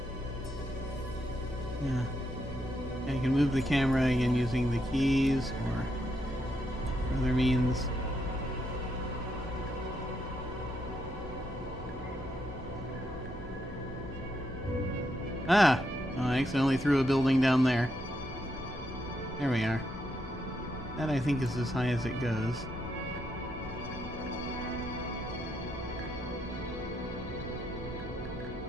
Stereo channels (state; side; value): normal; both; correlation 0.79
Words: Yeah. I can move the camera again using the keys or other means. Ah! Oh, I accidentally threw a building down there. There we are. That, I think, is as high as it goes.